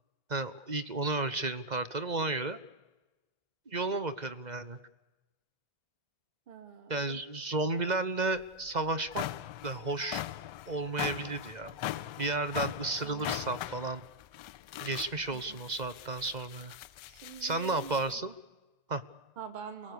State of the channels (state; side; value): late; left; 1.3 ms